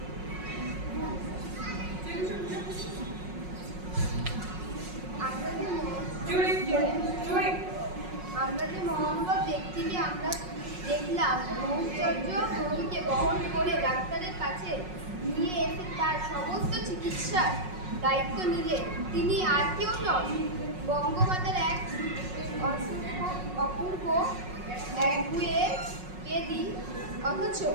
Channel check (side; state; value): left; late; 5.5 ms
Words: আমরা যে মহানুভব ব্যক্তিকে আমরা দেখলাম ব্রহ্মচর্য রোগীকে বহন করে ডাক্তারের কাছে নিয়ে এসে তার সমস্ত চিকিৎসার দায়িত্ব নিলেন, তিনি আর কেউ নন, বঙ্গমাতার এক অপূর্ব একগুয়ে বেদী অথচ